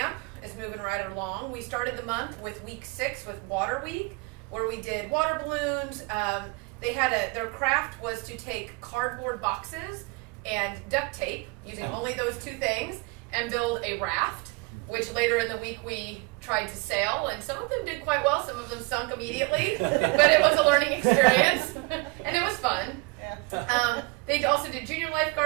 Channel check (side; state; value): left; quieter; 27.5 dB